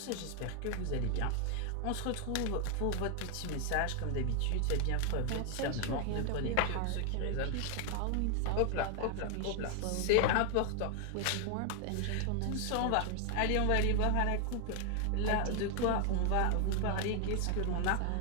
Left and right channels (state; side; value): different; both; correlation 0.00